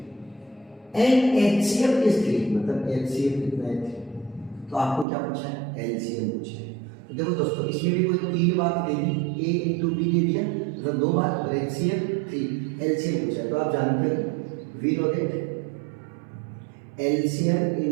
एंड एचसीएफ इज 3, मतलब एलसीएम कितना है 3, तो आपको क्या पूछा है एलसीएम पूछा है। तो देखो दोस्तों, इसमें भी कोई 3 बात दे दी, ए इंटू बी दे दिया, मतलब 2 बात, और एचसीएम 3, एलसीएम पूछा है। तो आप जानते हो we know that LCM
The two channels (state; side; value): drops out; left; at 5.1 s